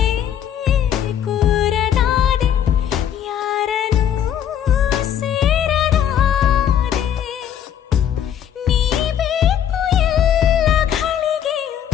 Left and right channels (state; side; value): quieter; right; 9.6 dB